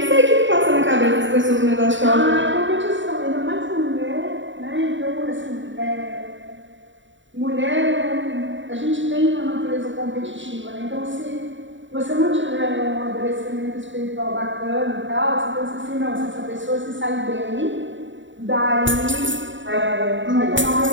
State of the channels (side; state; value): left; late; 0.55 ms